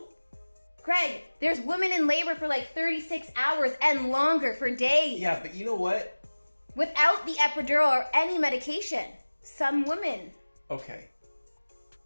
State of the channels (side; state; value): both; inverted; correlation -1.00